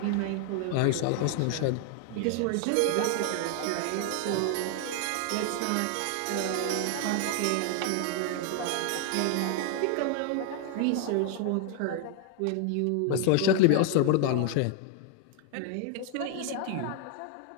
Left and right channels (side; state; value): both; different; correlation 0.00